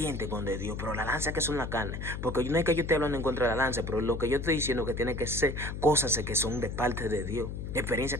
con de Dios, pero las lanzas que son la carne, porque no es que yo esté hablando en contra de la lanza, pero lo que yo estoy diciendo es que tiene que ser cosas que son de parte de Dios, experiencias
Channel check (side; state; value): left; noise; hum, 6 dB below the sound